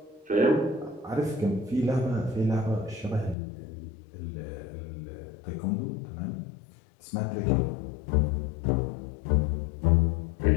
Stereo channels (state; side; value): drops out; right; at 3.4 s